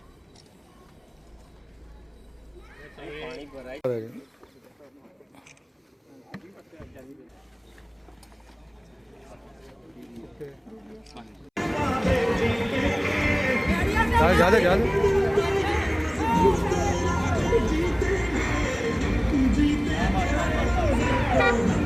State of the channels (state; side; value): identical; both; correlation 1.00